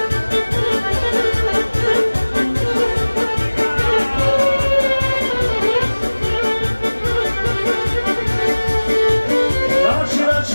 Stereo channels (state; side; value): inverted; both; correlation -1.00